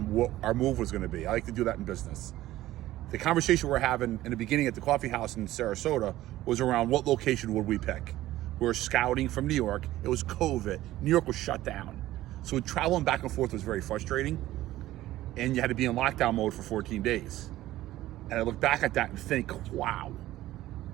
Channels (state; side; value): quieter; left; 15.3 dB